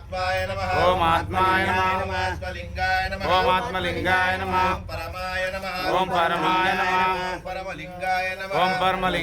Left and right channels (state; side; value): identical; both; correlation 1.00